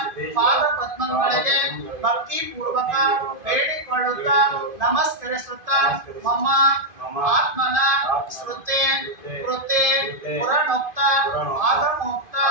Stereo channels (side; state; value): left; late; 2.5 ms